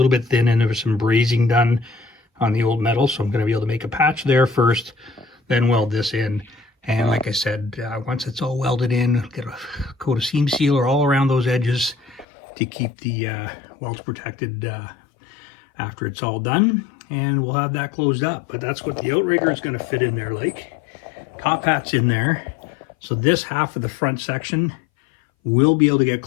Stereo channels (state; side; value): drops out; right; at 12.2 s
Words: bit thin and there was some brazing done on the old metal, so I'm gonna be able to make a patch there first, then weld this in. And like I said, once it's all welded in, get a coat of seam sealer all around those edges to keep the welds protected after it's all done, and we'll have that closed up. But that's what the outrigger is going to fit in there like. Top hat's in there, so this half of the front section will be able to get